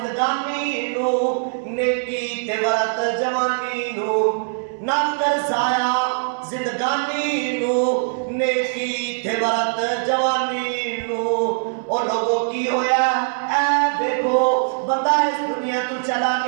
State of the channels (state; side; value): silent; left; digital silence